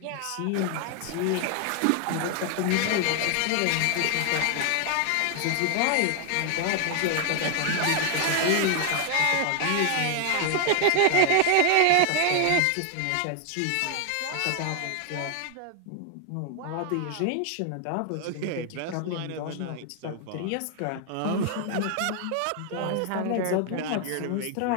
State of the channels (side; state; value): both; different; correlation 0.00